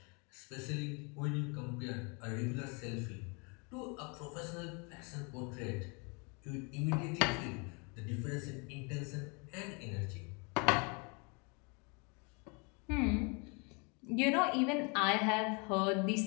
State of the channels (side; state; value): right; quieter; 32.5 dB